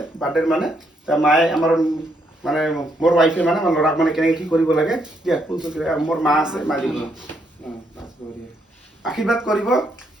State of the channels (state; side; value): normal; both; correlation 0.75